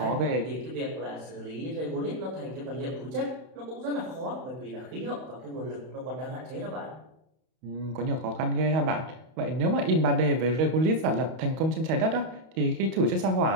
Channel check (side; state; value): left; late; 31 ms